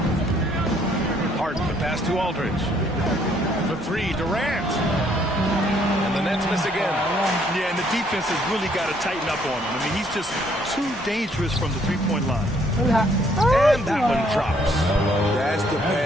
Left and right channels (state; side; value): normal; both; correlation 0.66